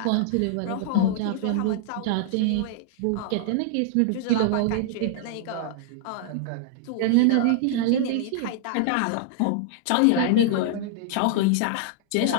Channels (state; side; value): different; both; correlation -0.01